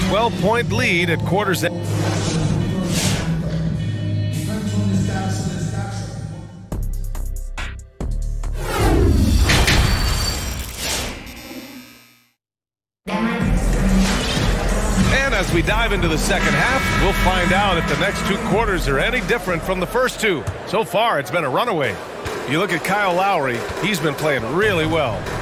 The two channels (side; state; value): both; identical; correlation 1.00